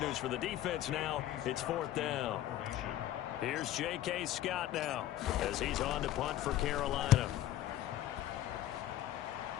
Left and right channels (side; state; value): right; quieter; 13.3 dB